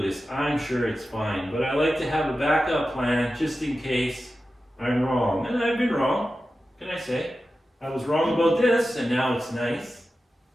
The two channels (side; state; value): both; normal; correlation 0.93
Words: is. I'm sure it's fine, but I like to have a backup plan just in case I'm wrong. And I've been wrong, can I say? I was wrong about this, and now it's nice.